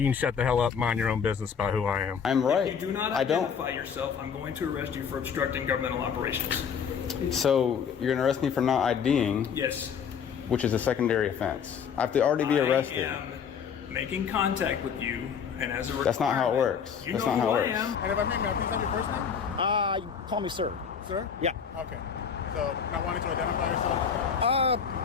can shut the hell up, mind your own business about who I am. I'm right. If you do not identify yourself, I'm going to arrest you for obstructing governmental operations. So you're gonna arrest me for not IDing, Yes. which is a secondary offense. I have to already be arrested. I am making contact with you, and as a requirement, That's not how it works. You That's know not how who it I works. am. And if I may I please have your first name? Call me sir. Sir? Yeah. Okay. So, not wanting to identify yourself?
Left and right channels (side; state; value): right; quieter; 7.0 dB